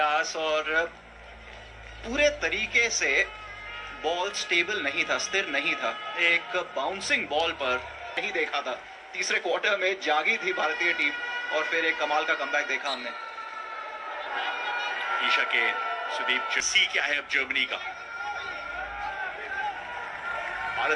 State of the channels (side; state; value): both; identical; correlation 1.00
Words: और पूरे तरीके से बॉल स्टेबल नहीं था, स्थिर नहीं था। एक बाउंसिंग बॉल पर नहीं देखा था। तीसरे क्वार्टर में जागी थी भारतीय टीम और फिर एक कमाल का कमबैक देखा हमने। ईशा के सुदीप सी क्या है अब जर्मनी का।